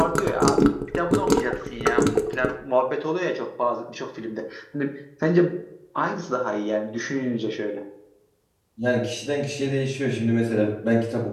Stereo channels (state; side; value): identical; both; correlation 1.00